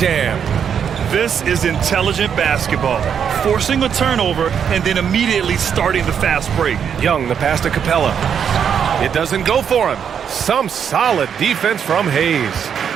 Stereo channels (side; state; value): left; quieter; 7.8 dB